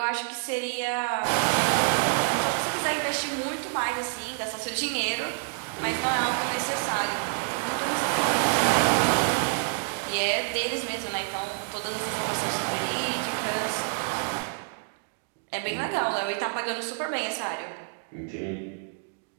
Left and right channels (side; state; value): left; silent; digital silence